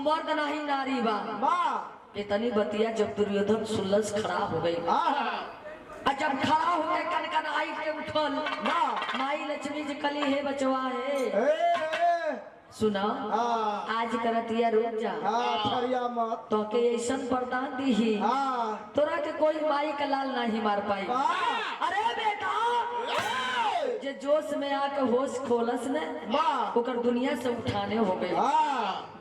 नहीं नारी बा। इतनी बतिया जब दुर्योधन सुलस खड़ा हो गई, जब खड़ा हो गए कन कन आई के उठल, माई लक्ष्मी जी कली है बचवा है सुना आज करतिया रुक जा मत तो के ऐसा वरदान दी ही तोरा के कोई माई का लाल नहीं मार पाई। अरे बेटा जे जोश में आके होश खोलस ने ओकर दुनिया से उठाने हो गए।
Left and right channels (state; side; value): identical; both; correlation 1.00